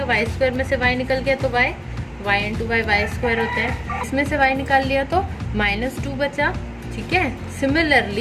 y² में से y निकल गया तो y × y y² होता है। इसमें से y निकाल लिया तो -2 बचा, ठीक है।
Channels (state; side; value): identical; both; correlation 1.00